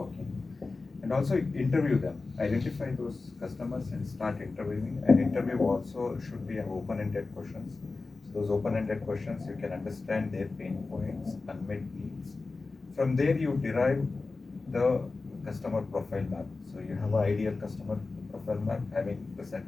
and also interview them, identify those customers and start interviewing. And interview also should be an open-ended questions. So those open-ended questions, you can understand their pain points, unmet needs. From there you derive the customer profile map. So you have an ideal customer profile map having the set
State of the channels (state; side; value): quieter; right; 3.8 dB